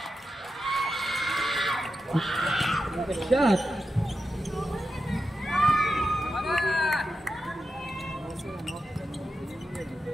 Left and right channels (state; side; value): normal; both; correlation 0.89